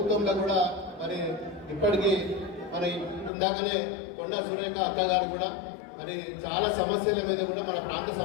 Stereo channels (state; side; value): drops out; right; at 3.3 s